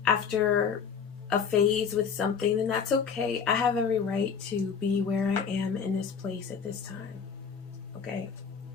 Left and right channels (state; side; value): quieter; right; 6.5 dB